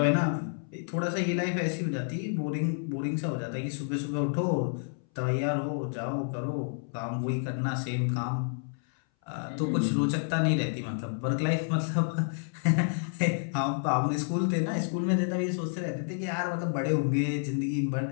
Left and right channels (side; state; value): right; silent; 58 dB below the other